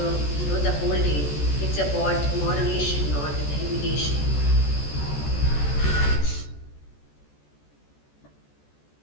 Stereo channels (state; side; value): late; right; 14 ms